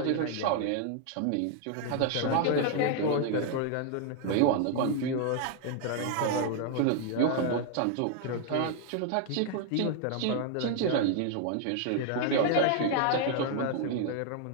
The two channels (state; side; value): different; both; correlation 0.00